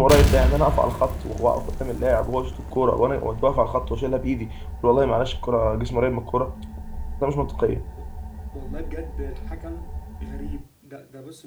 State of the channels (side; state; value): both; identical; correlation 1.00